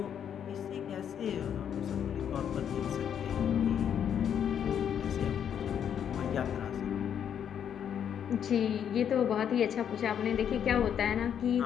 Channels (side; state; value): right; quieter; 8.7 dB